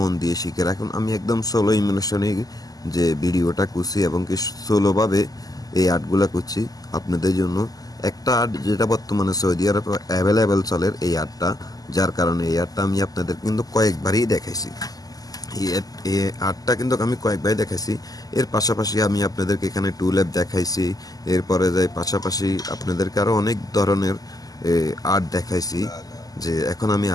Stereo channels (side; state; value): right; late; 0.18 ms